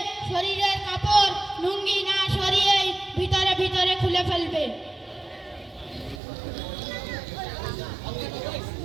শরীরের কাপড় লুঙ্গি না সরিয়েই ভিতরে ভিতরে খুলে ফেলবে।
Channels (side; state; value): left; drops out; at 6.2 s